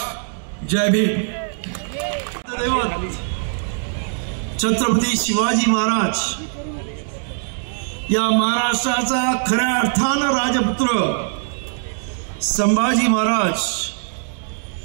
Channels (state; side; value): silent; left; digital silence